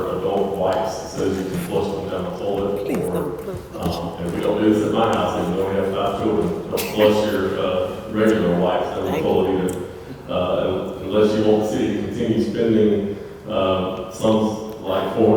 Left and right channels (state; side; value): identical; both; correlation 1.00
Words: adult wipes says you can flush them down the toilet, and we don't do this at my house, even though we have 5 children, don't flush your regular wipes down the toilet either, unless you want the city to continue spending some like